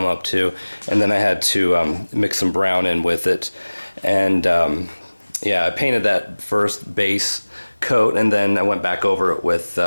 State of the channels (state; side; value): inverted; both; correlation -1.00